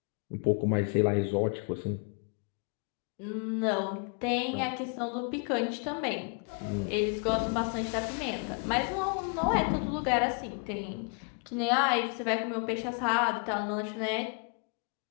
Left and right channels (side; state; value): right; quieter; 37.8 dB